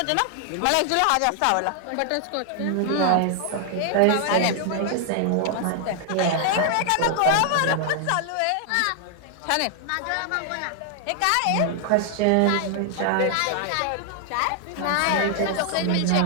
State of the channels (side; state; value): both; different; correlation 0.00